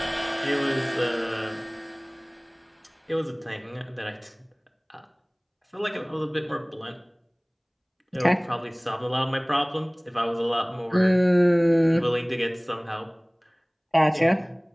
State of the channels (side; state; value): both; identical; correlation 1.00